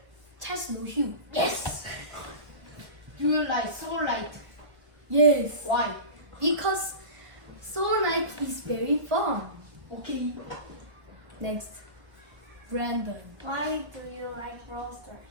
Test no Hugh. Yes. Do you like Soullight? Yes, Why? because Soul Night is very fun. Okay. Next, Brandon. Why do you like Brawl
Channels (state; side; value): late; left; 1.1 ms